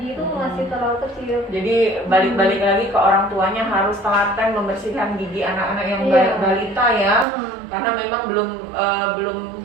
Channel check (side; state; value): left; drops out; at 7.2 s